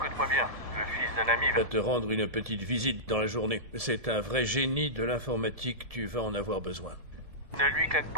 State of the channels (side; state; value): left; late; 1.7 ms